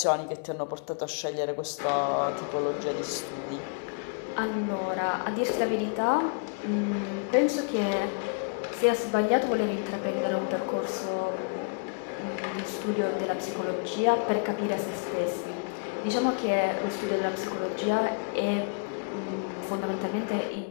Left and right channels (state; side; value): quieter; right; 38.5 dB